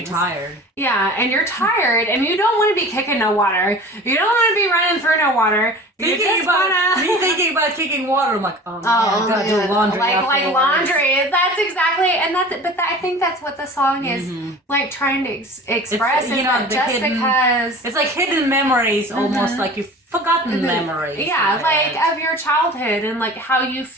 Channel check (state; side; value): normal; both; correlation 0.40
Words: tired. Yeah, and you're tired and you don't want to be kicking no water. You don't want to be running through no water. Me thinking about kicking water, I'm like, oh man, I gotta do laundry. Like laundry. That's exactly, and I think that's what the song is like trying to express. It's, because it's like hidden memories, almost like you've forgotten memories. Yeah, like of your childhood and like how you